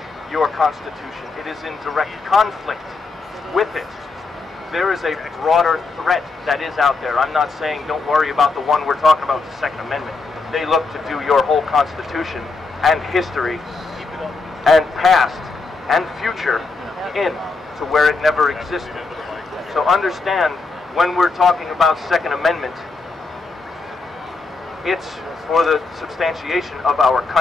your constitution. It is in direct conflict with it. There is a broader threat that is out there. I'm not saying don't worry about the one we're talking about, the Second Amendment. They look to do your whole constitution and history and past and future in to where it never existed. So understand, when we're talking about Second Amendment, it's for the substantiation of our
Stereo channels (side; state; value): right; quieter; 3.9 dB